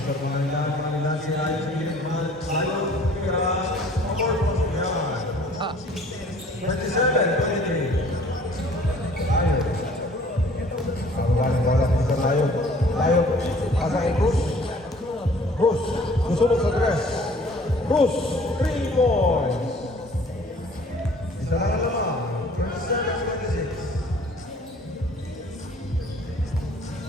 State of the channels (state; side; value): normal; both; correlation 0.54